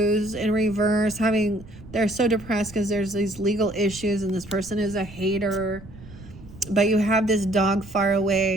in reverse, they're so depressed because there's these legal issues and this person is a hater. But you have this dog far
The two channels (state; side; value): noise; right; rumble, 18 dB below the sound